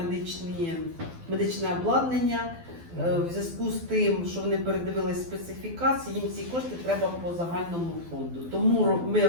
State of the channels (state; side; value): late; left; 12 ms